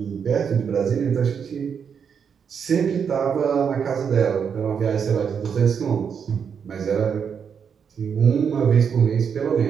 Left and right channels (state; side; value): quieter; left; 7.0 dB